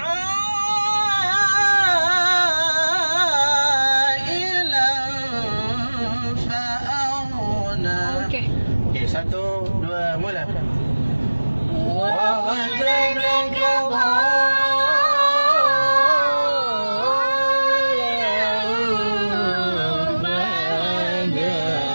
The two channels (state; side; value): inverted; both; correlation -1.00